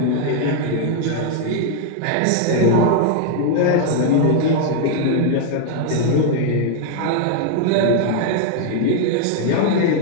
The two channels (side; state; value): both; different; correlation 0.00